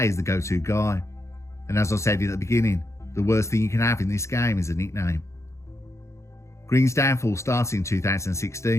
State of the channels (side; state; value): right; late; 0.14 ms